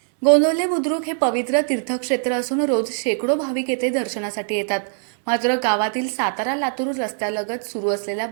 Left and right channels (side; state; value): left; silent; 61 dB below the other